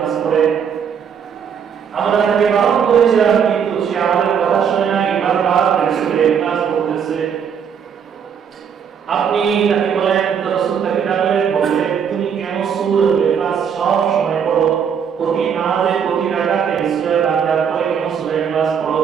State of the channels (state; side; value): quieter; left; 7.4 dB